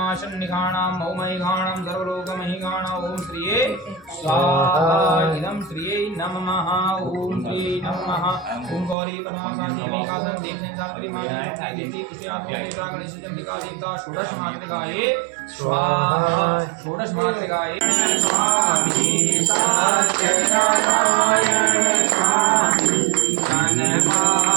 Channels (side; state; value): left; drops out; at 9.0 s